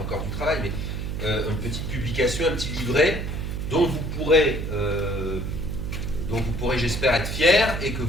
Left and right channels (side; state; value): right; noise; hum, 4 dB below the sound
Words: du travail, mais une petite publication, un petit livret, dont vous pourrez, j'espère, être fiers, et que